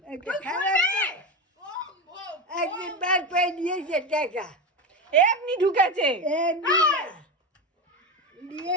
একদিন বার করে দিয়েছে টাকা, এমনি ঢুকেছে।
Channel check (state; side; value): normal; both; correlation 0.18